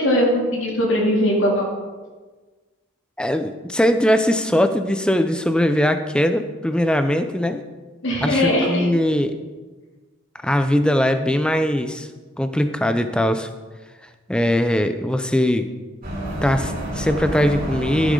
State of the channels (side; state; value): both; normal; correlation 0.75